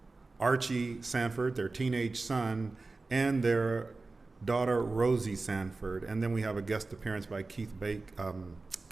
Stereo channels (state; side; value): quieter; left; 3.6 dB